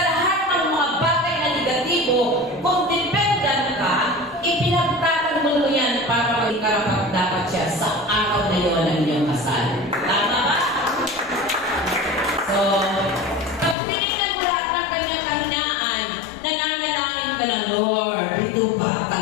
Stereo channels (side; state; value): right; drops out; at 13.8 s